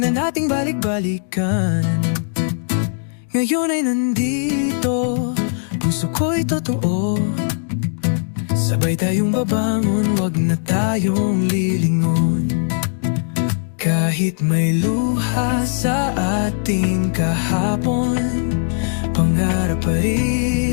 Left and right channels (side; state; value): right; silent; digital silence